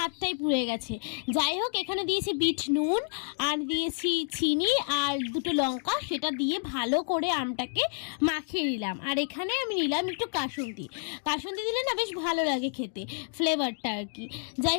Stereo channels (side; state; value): right; silent; 58 dB below the other